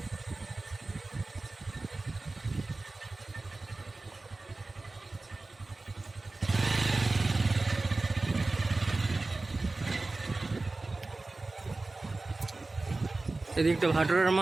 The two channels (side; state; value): left; quieter; 3.3 dB